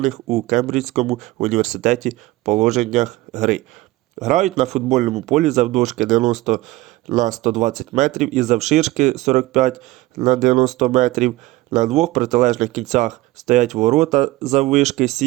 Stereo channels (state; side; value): quieter; left; 18.6 dB